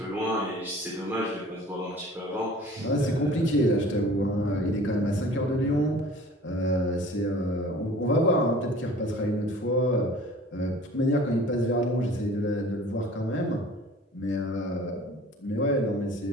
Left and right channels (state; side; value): normal; both; correlation 0.46